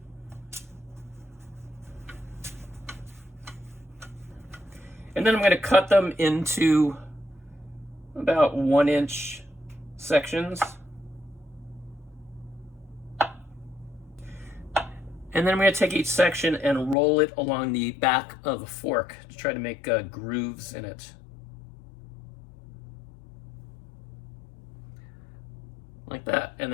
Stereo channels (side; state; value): right; drops out; at 16.9 s